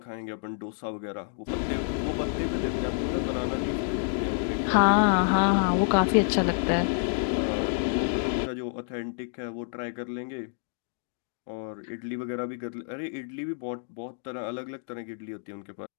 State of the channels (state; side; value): silent; right; digital silence